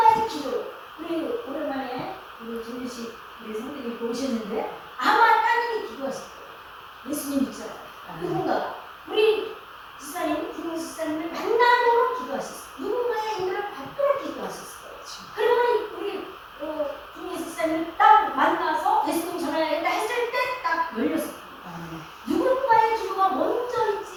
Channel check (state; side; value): identical; both; correlation 1.00